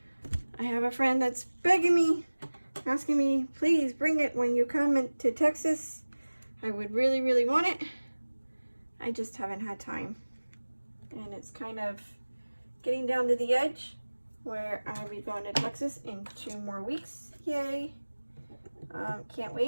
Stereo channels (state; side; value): inverted; both; correlation -1.00